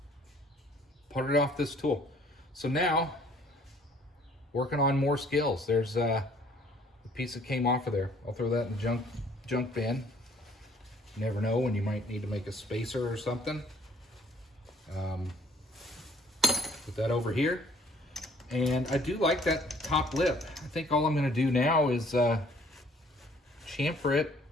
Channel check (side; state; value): both; normal; correlation 0.59